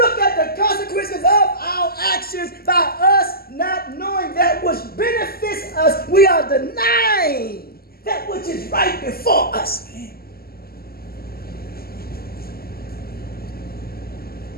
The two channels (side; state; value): right; late; 0.44 ms